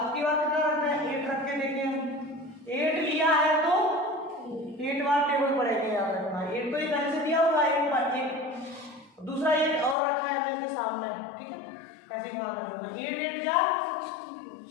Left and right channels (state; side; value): drops out; right; at 10.0 s